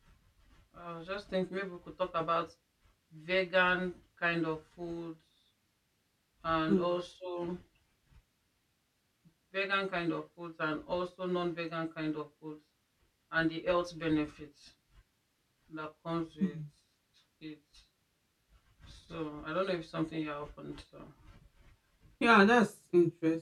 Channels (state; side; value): identical; both; correlation 1.00